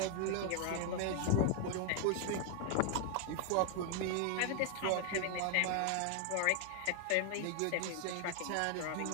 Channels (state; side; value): different; both; correlation 0.00